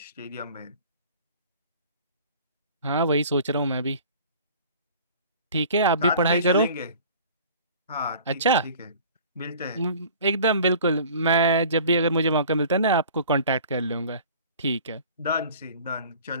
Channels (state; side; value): inverted; both; correlation -0.46